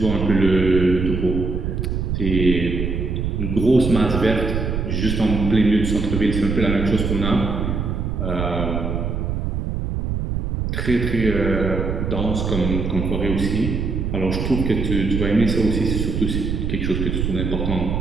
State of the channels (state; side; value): noise; right; rumble, 2 dB below the sound